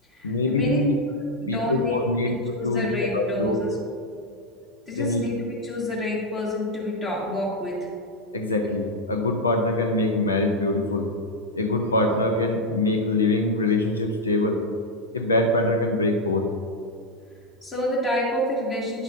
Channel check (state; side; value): normal; both; correlation 0.01